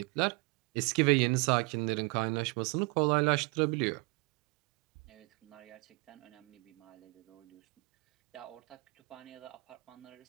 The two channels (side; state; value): left; quieter; 29.4 dB